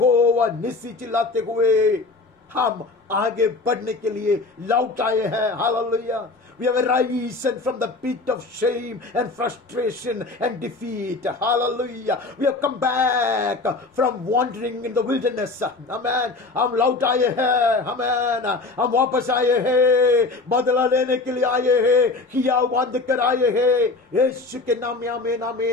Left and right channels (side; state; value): right; quieter; 3.5 dB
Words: निस्सी चिल्लाते हुए हम आगे बढ़ने के लिए लौट आए हैं। Hallelujah. We have arisen from the pit of shame and frustration and defeat. Hallelujah. We have come back from wandering in the wilderness. Amen. हम लौट आए हैं। Amen. हम वापस आए हैं, बदला लेने के लिए आए हैं, किया बांध कर आए हैं। यीशु के नाम में आमीन,